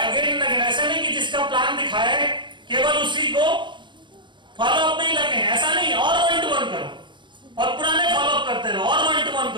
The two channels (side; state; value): left; late; 0.23 ms